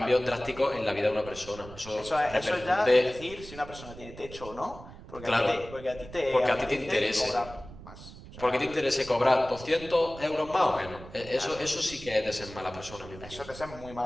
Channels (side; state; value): right; noise; rumble, 15 dB below the sound